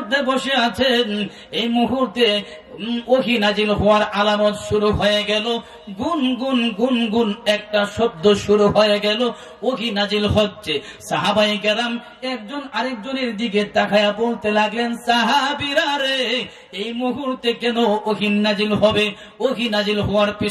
বসে আছেন। এই মুহূর্তে ওহী নাজিল হওয়ার আলামত শুরু হয়ে গেল, গুন গুন গুন গুন একটা শব্দ শুরু হয়ে গেল, ওহী নাজিল হচ্ছে। সাহাবায়ে কেরাম একজন আরেকজনের দিকে তাকায়া বলতে লাগলেন, সাহাবীরা রে, এই মুহূর্তে কেন ওহী নাজিল হবে? ওহী নাজিল হওয়ার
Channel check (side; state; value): both; identical; correlation 1.00